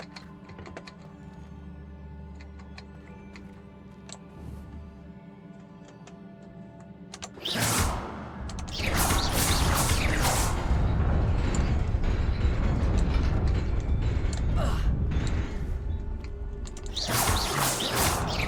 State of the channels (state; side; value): identical; both; correlation 1.00